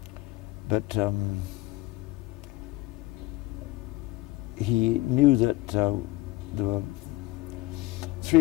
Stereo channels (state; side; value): quieter; right; 18.2 dB